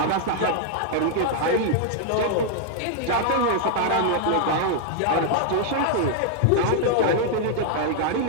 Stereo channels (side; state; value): both; different; correlation 0.00